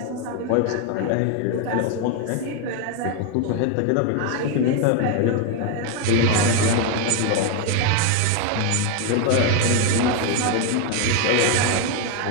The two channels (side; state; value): both; different; correlation 0.01